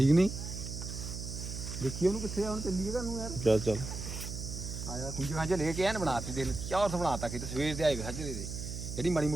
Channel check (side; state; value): right; noise; hum, 6 dB below the sound